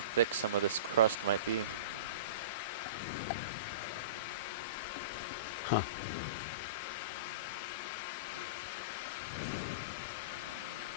some of this crust might be. Huh.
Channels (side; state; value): both; inverted; correlation -0.32